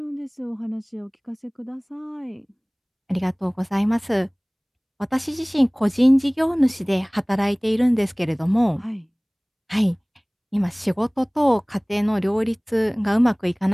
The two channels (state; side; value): identical; both; correlation 1.00